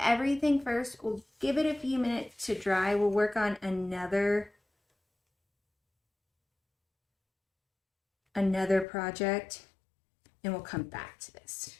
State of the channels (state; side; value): drops out; right; at 8.8 s